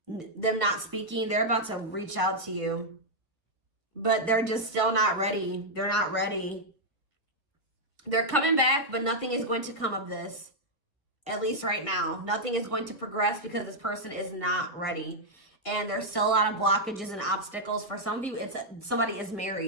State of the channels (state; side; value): normal; both; correlation -0.04